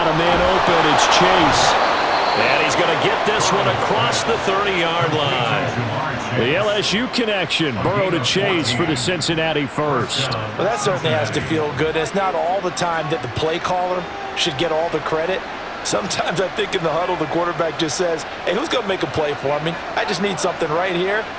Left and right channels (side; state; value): both; identical; correlation 1.00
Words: a man open. It's Chase. And he's going to get this one across the 30-yard line. The LSU connection. Burrow to Chase for the Cincinnati first. Well, that certainly has to feel good. It's not all the time that the play caller should get all the credit. Sometimes I think in the huddle, the quarterback just says, hey, who's going to make a play for me? I just need something right here.